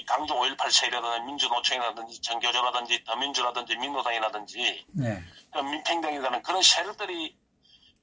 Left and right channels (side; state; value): both; normal; correlation 0.93